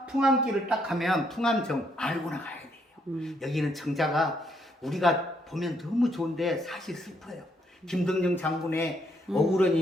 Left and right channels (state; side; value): normal; both; correlation 0.73